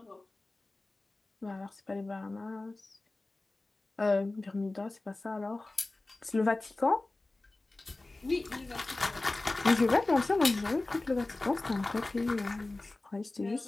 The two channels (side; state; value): right; quieter; 3.0 dB